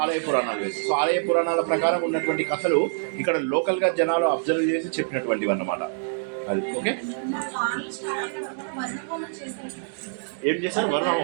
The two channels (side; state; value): left; silent; digital silence